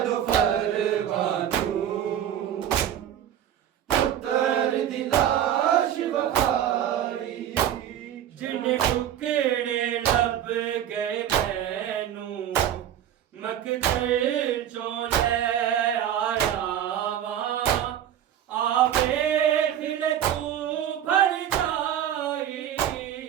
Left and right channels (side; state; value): left; quieter; 10.5 dB